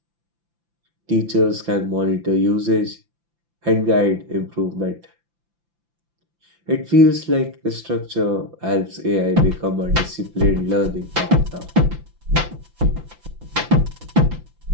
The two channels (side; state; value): left; late; 5.9 ms